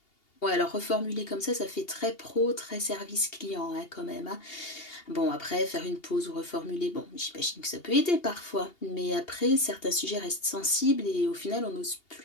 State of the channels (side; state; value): right; late; 2.8 ms